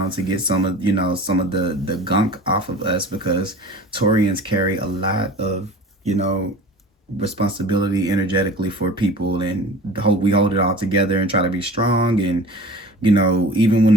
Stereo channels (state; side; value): normal; both; correlation 0.40